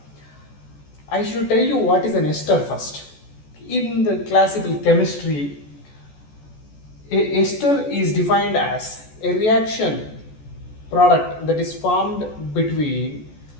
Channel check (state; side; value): late; right; 14 ms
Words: I should tell you what is an ester first. In the classical chemistry, a ester is defined as a reaction product that is formed between